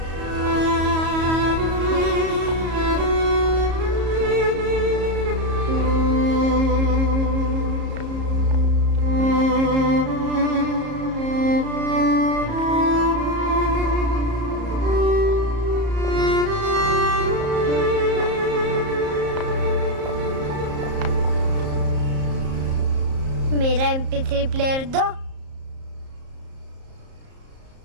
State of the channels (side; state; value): left; late; 34 ms